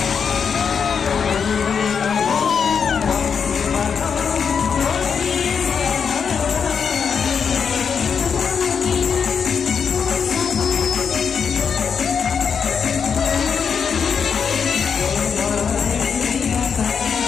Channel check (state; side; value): quieter; right; 6.6 dB